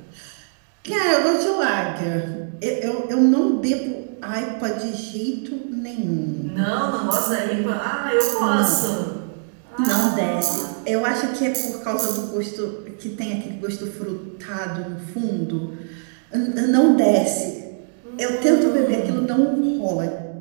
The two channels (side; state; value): left; silent; digital silence